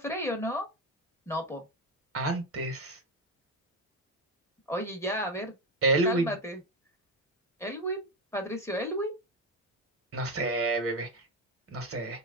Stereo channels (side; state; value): both; normal; correlation 0.14